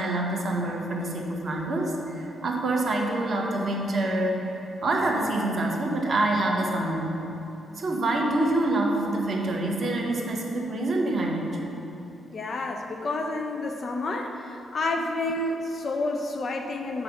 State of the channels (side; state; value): both; normal; correlation 0.74